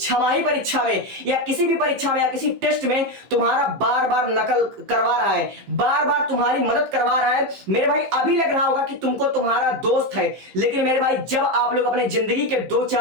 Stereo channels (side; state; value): left; late; 15 ms